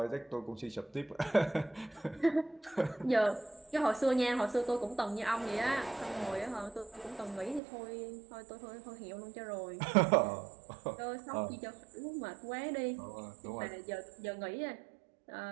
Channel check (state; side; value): drops out; left; at 7.6 s